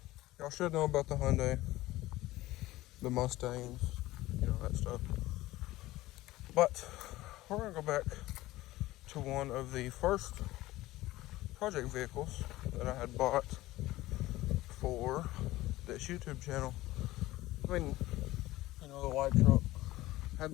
Y'all should know about the Hyundai, the Mustangs, that stuff. But we're gonna go back to one of the first project vehicles that I had bought for this YouTube channel. I mean, the white truck. I had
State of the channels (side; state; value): right; quieter; 17.4 dB